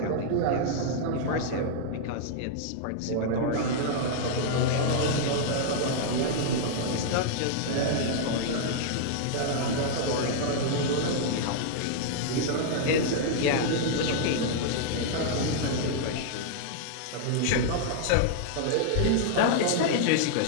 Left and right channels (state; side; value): different; both; correlation -0.01